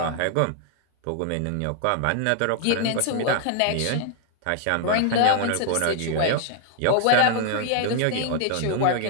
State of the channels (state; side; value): different; both; correlation 0.00